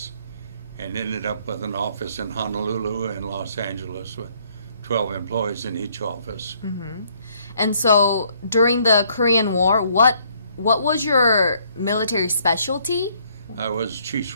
and ended up with an office in Honolulu and Los Angeles with 12 employees in each office. And so during the Korean War, what was your military specialty? I was chief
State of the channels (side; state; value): both; inverted; correlation -0.66